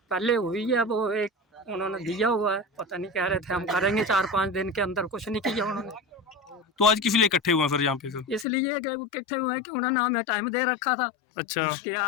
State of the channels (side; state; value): right; drops out; at 8.5 s